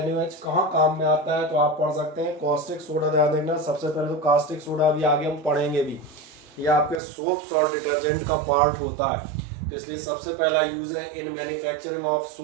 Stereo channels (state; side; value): drops out; left; at 7.0 s